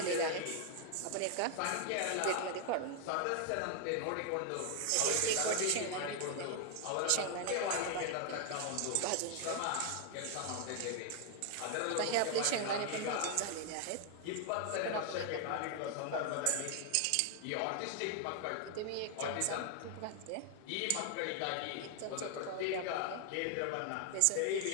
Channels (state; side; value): different; both; correlation 0.00